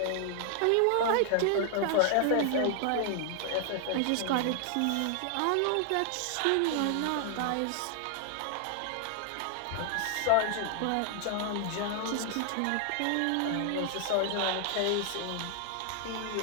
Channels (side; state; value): both; different; correlation 0.00